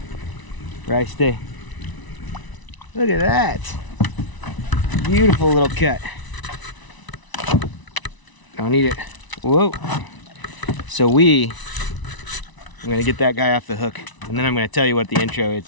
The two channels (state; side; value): late; right; 1.0 ms